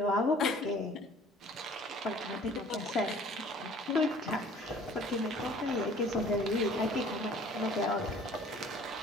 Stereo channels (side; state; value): both; normal; correlation 0.52